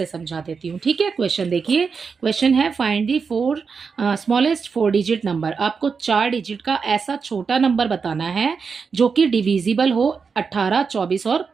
समझा देती हूँ। ठीक है, क्वेश्चन देखिए, क्वेश्चन है find the smallest 4 digit number. आपको 4 डिजिट का ऐसा छोटा नंबर बताना है जो कि डिविजिबल हो 18, 24 और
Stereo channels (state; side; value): quieter; left; 5.4 dB